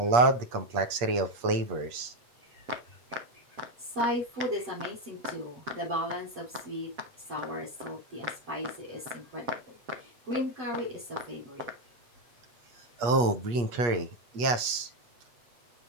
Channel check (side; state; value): left; late; 8.4 ms